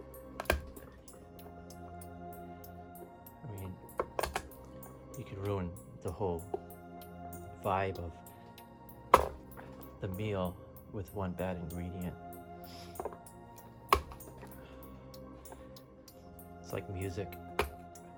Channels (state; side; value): identical; both; correlation 1.00